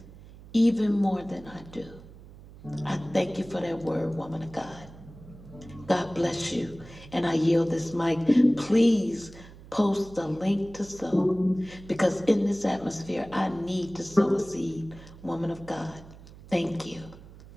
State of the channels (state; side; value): noise; right; hum, 19 dB below the sound